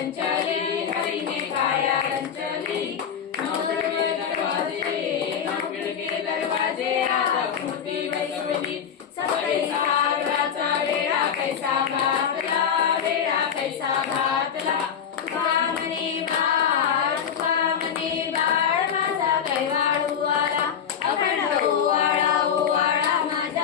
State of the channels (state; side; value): quieter; right; 7.8 dB